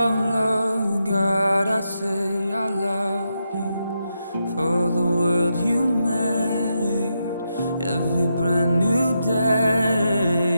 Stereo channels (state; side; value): inverted; both; correlation -0.84